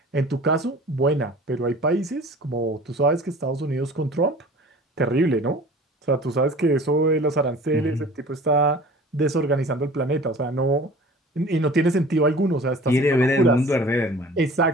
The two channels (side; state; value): both; normal; correlation 0.44